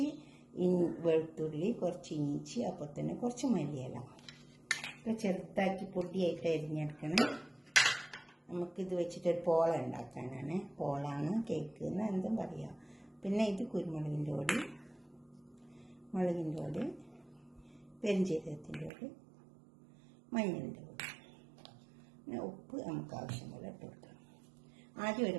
വെളുത്തുള്ളി, കുറച്ച് ഇഞ്ചി, അപ്പോൾ തന്നെ കുറച്ച് മല്ലിയില ഒക്കെ ചെറുതാക്കി പൊടിയായിട്ട് അരിഞ്ഞെടുക്കണം. നമുക്കിത് വെച്ചിട്ടൊരു പോള ഉണ്ടാക്കാനാണ്. പോളാണ്, കേക്ക് എന്ന് എന്തും പറയാം. പിന്നെ ഇത് കുരുമുളകിൻ്റെ പൊടി, മുളകിൻ്റെ പൊടി, പെരിഞ്ചീരകത്തിൻ്റെ പൊടി, മഞ്ഞളിൻ്റെ പൊടി, പിന്നെ ഉപ്പ് നമുക്ക് ആവശ്യം പോലെ ഇട്ട് കൊടുക്കാം. ആദ്യം ഒരു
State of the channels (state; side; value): drops out; left; at 18.9 s